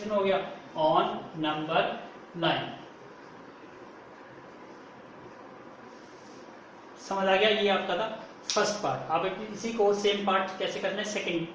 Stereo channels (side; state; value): both; identical; correlation 1.00